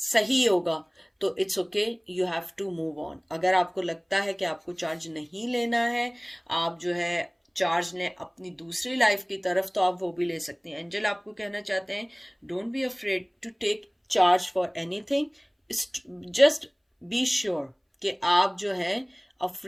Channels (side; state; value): both; identical; correlation 1.00